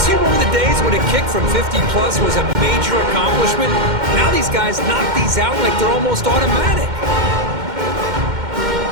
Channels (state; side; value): late; left; 2.1 ms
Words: you remember the days when a kick from 50-plus was a major accomplishment? Now these guys knock these out like they're almost automatic.